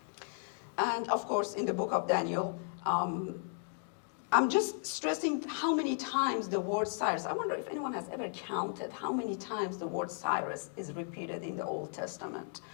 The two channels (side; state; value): right; silent; 54 dB below the other